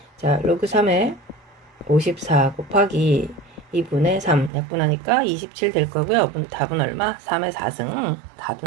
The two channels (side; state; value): left; drops out; at 4.5 s